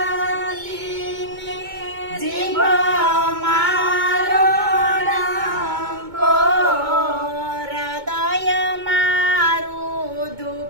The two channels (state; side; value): late; left; 2.2 ms